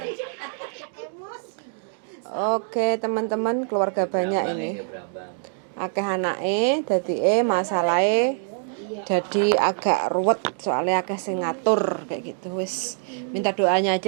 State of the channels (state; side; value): silent; left; 62 dB below the other